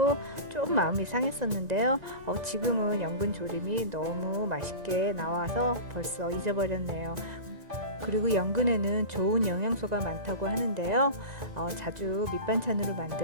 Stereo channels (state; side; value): late; left; 1.9 ms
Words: 좀 마음이 상했었는데요. 지금은 연근 조림이 너무 맛있게 나와서 벌써 잊어버렸네요. 그리고 연근에는 좋은 영양소가 많다고 하는데요. 자주 밑반찬으로